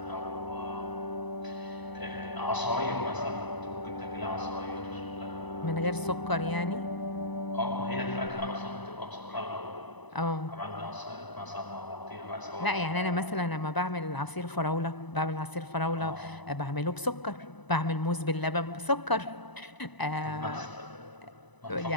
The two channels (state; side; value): late; right; 1.0 ms